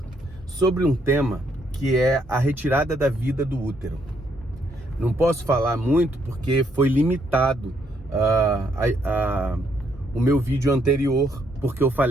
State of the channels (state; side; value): normal; both; correlation 0.73